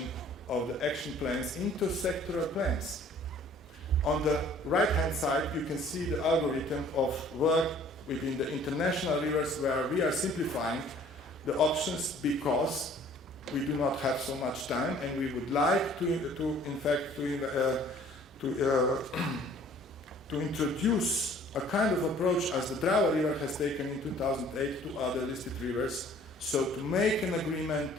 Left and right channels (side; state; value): both; normal; correlation 0.54